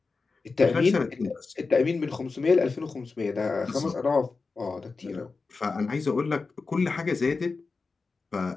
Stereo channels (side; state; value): right; quieter; 4.2 dB